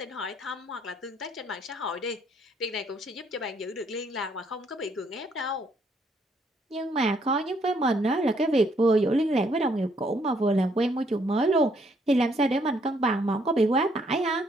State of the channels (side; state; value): both; normal; correlation 0.69